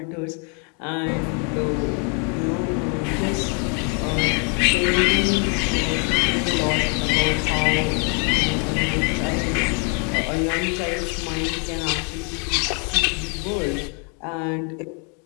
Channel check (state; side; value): quieter; right; 37.6 dB